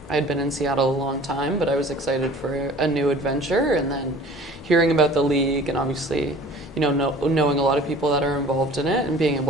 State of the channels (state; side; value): normal; both; correlation 0.46